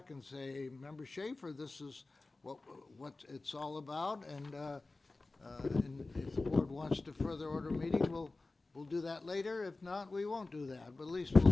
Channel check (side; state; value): right; quieter; 3.3 dB